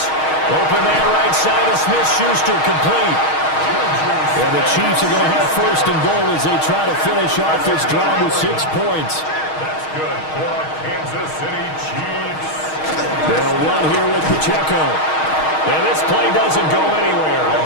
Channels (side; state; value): right; late; 6.4 ms